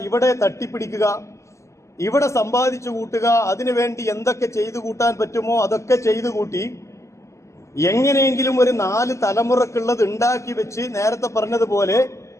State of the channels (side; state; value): right; late; 0.14 ms